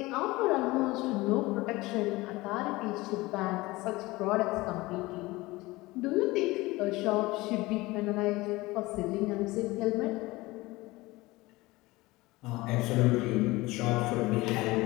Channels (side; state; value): right; quieter; 20.7 dB